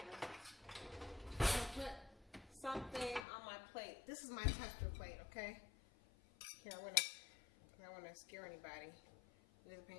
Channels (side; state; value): right; drops out; at 3.2 s